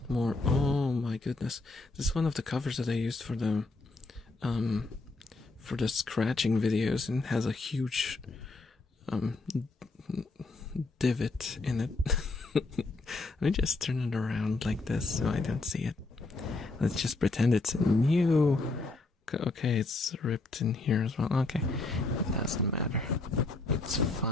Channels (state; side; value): quieter; right; 3.3 dB